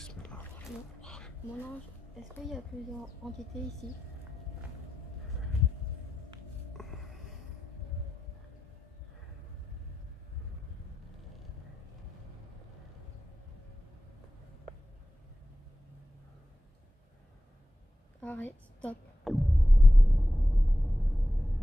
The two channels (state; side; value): normal; both; correlation 0.92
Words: Mon ange, est-ce qu'il y a plusieurs entités ici? Arrête, stop.